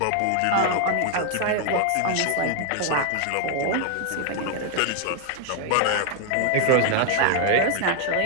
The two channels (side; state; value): both; different; correlation 0.00